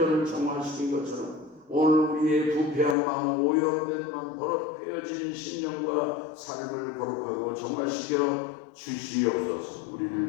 정화시킨 것처럼 오늘 우리의 부패한 마음, 오염된 마음, 더럽혀진 신령과 삶을 거룩하고 정화시켜 주시옵소서.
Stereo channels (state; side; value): drops out; right; at 3.0 s